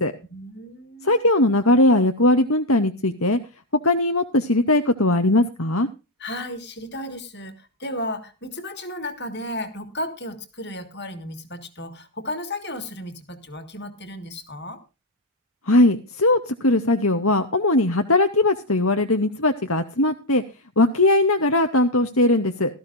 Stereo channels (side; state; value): both; normal; correlation 0.05